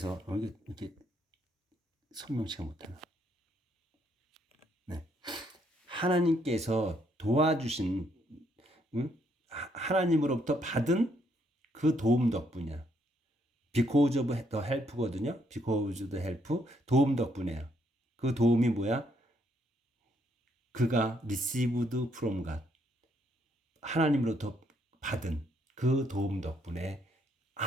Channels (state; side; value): normal; both; correlation 0.72